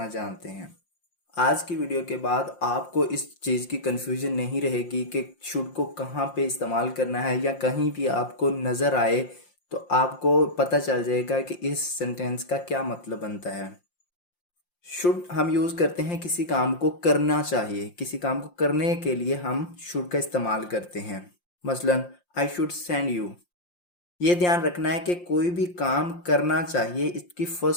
जानते हैं? आज की वीडियो के बाद आपको इस चीज़ की कन्फ्यूजन नहीं रहेगी कि शुड को कहाँ पे इस्तेमाल करना है, या कहीं भी आपको नज़र आए तो आपको पता चल जाएगा कि इस सेंटेंस का क्या मतलब बनता है. शुड हम यूज़ करते हैं किसी काम को करना चाहिए, किसी काम को करने के लिए हम शुड का इस्तेमाल करते हैं. मसलन आई शुड सेंड यू. ये ध्यान रखना है कि कोई भी काम करना चाहिए इसकी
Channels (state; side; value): late; right; 5.7 ms